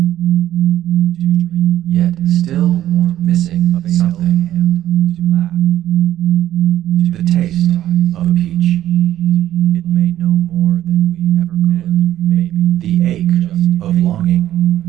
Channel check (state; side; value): quieter; left; 12.7 dB